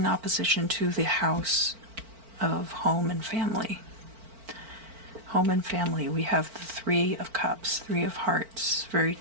opposition to the house of home and family. Home and family, we have the 3 of Cups, 3 of Hearts,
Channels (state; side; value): late; left; 4.5 ms